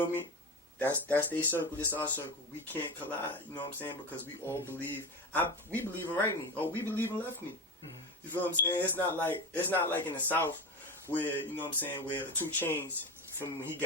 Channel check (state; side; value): normal; both; correlation 0.23